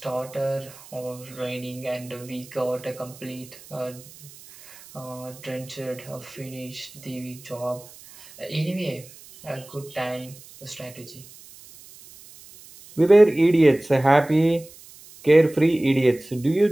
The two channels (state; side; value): noise; right; hiss, 21 dB below the sound